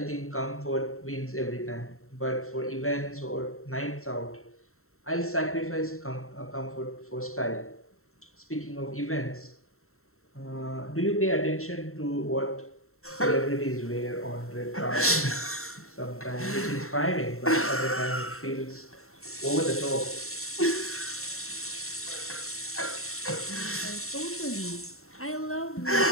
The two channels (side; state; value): right; late; 0.63 ms